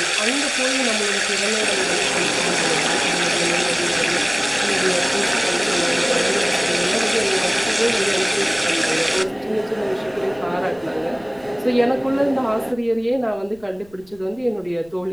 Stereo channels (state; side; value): noise; left; rumble, 27 dB below the sound